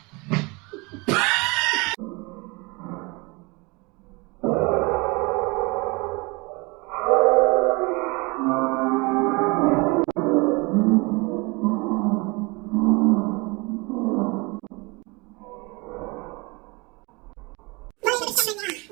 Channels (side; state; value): left; quieter; 27.2 dB